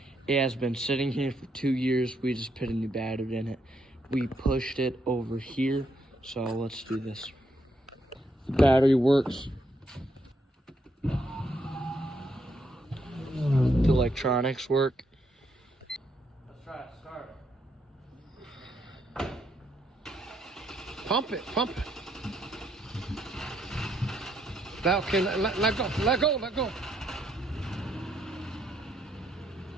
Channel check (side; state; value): both; normal; correlation 0.75